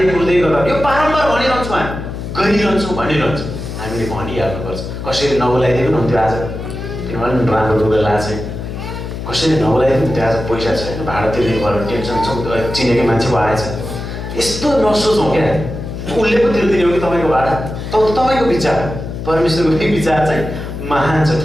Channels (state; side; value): noise; left; hum, 7 dB below the sound